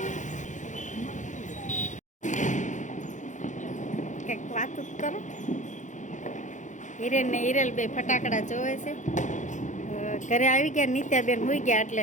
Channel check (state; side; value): late; right; 0.36 ms